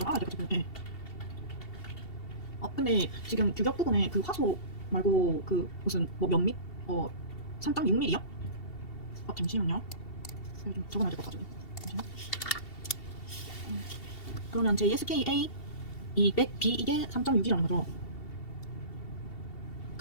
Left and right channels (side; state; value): right; late; 2.7 ms